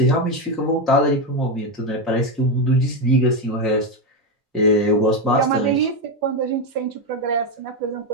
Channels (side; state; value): both; normal; correlation 0.10